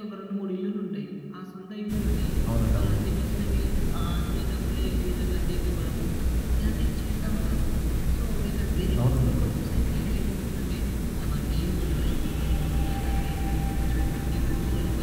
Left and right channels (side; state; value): both; identical; correlation 1.00